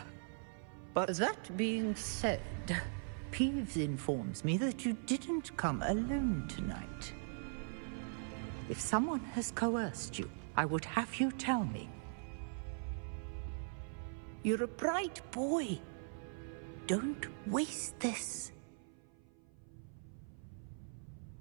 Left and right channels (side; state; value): left; silent; 51 dB below the other